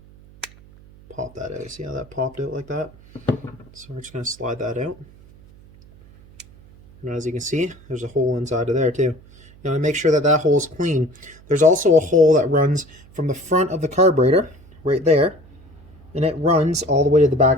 pop that out. See how that popped out like that? So we're just going to slide that out. And as you can see, there's a hole inside of there too. You want to make sure that that hole is clean. There's also a hole that runs from the front of the carburetor, right there, and it runs all the way to the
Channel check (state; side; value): noise; right; hum, 24 dB below the sound